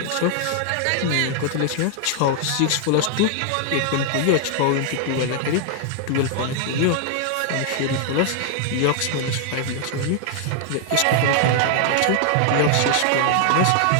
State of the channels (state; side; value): different; both; correlation 0.00